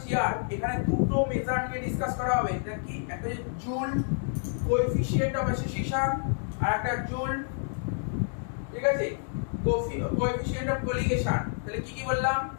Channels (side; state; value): right; silent; 59 dB below the other